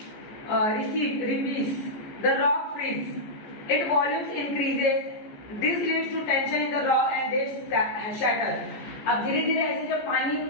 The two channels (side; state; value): right; late; 14 ms